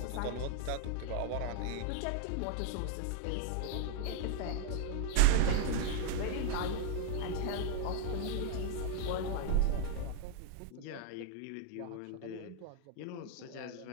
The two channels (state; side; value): different; both; correlation 0.00